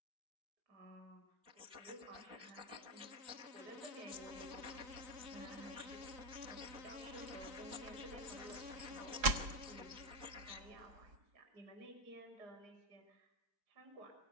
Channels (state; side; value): late; left; 4.7 ms